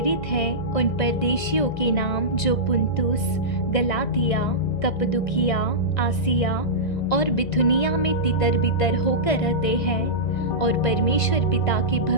है, उन परदेशियों के नाम जो पुन्तुस, गलातिया, कप्पदुकिया, आसिया और बिथुनिया में तितर बितर होकर रहते हैं और परमेश्वर पिता के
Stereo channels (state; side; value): late; right; 2.0 ms